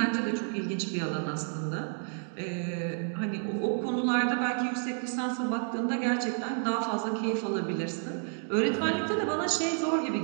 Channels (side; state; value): left; silent; 58 dB below the other